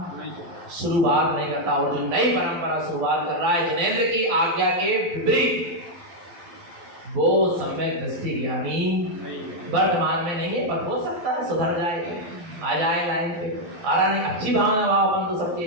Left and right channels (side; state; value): left; late; 12 ms